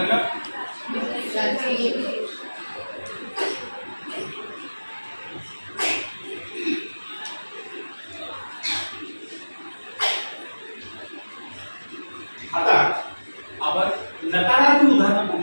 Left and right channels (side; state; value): both; inverted; correlation -1.00